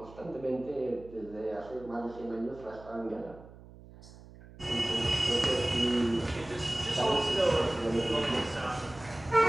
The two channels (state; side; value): noise; right; hum, 19 dB below the sound